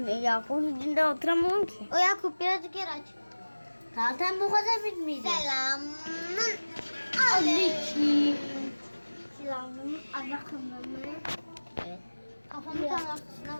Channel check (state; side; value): inverted; both; correlation -1.00